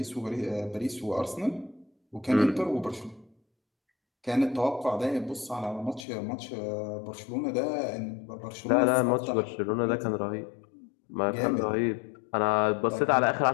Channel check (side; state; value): right; drops out; at 6.1 s